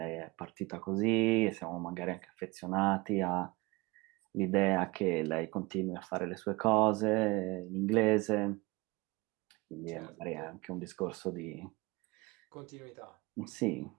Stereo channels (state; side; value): quieter; left; 23.5 dB